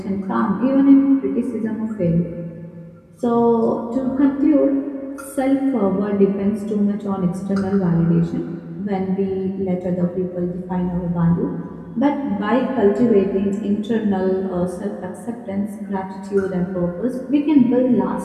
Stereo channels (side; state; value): both; identical; correlation 1.00